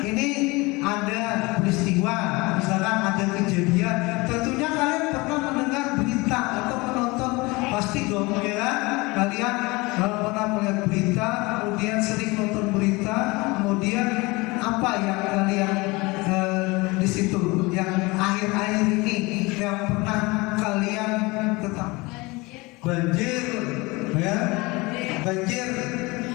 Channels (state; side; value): quieter; right; 24.1 dB